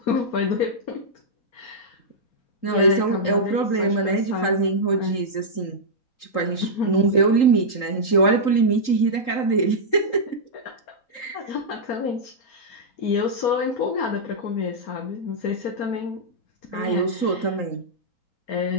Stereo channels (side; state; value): right; late; 3.8 ms